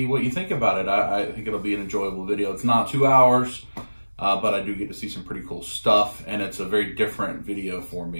what you think about it. I think it'll be an enjoyable video. It's not 2 hours, but I do get to see some pretty cool stuff, and it's a very different video for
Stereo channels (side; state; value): both; inverted; correlation -1.00